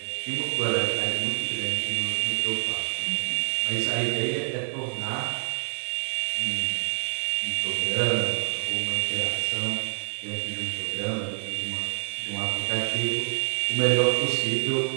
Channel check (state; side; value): silent; left; 60 dB below the other